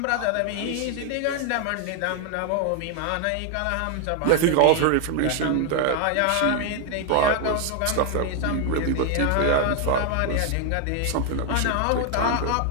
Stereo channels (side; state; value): both; different; correlation 0.01